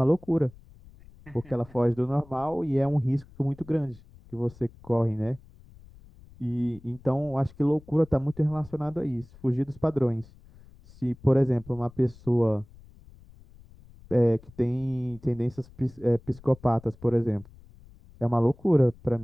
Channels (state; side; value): noise; left; rumble, 23 dB below the sound